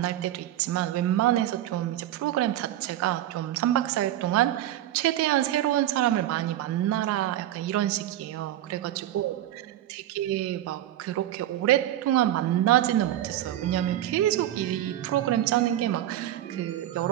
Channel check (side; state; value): left; quieter; 12.9 dB